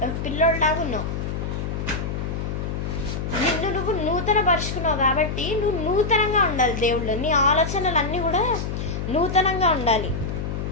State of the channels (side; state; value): left; noise; hum, 4 dB below the sound